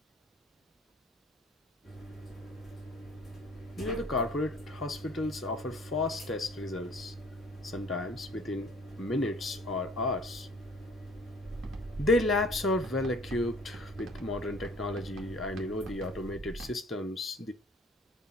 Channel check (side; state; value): both; normal; correlation 0.52